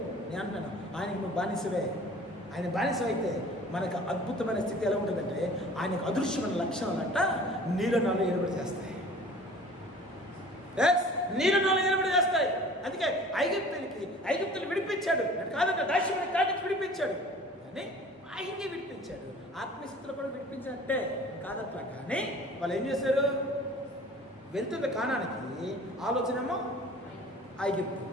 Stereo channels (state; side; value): normal; both; correlation 0.46